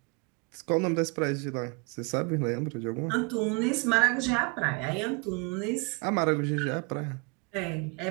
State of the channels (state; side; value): quieter; left; 31.9 dB